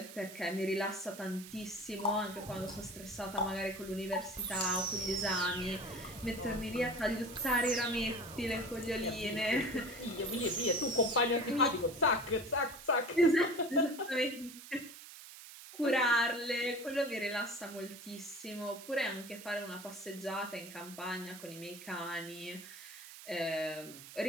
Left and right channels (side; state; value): right; noise; hiss, 15 dB below the sound